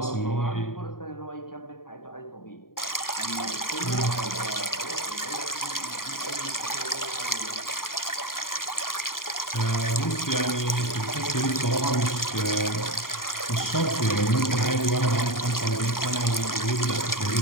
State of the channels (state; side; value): late; right; 0.91 ms